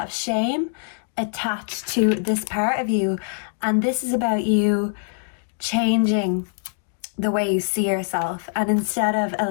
of shame attached to this part of you. And this is about you changing the way you see yourself. And instead of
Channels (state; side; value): silent; right; digital silence